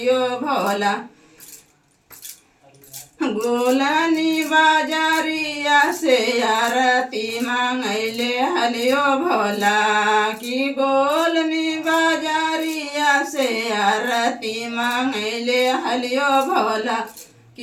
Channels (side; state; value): both; identical; correlation 1.00